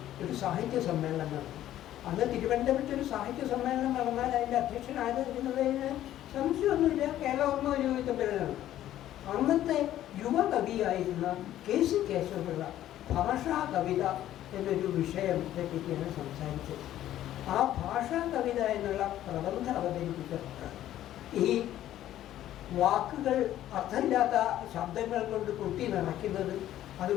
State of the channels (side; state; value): right; quieter; 12.7 dB